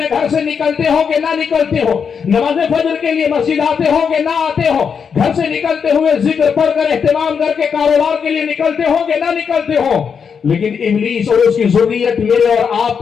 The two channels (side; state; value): right; quieter; 6.5 dB